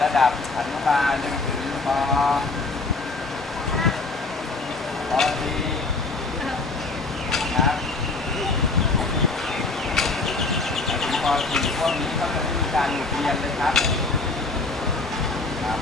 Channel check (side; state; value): right; quieter; 3.6 dB